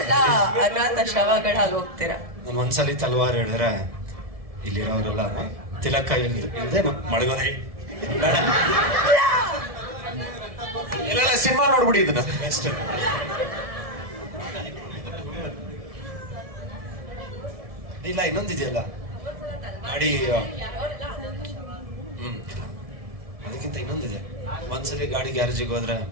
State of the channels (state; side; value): late; left; 1.7 ms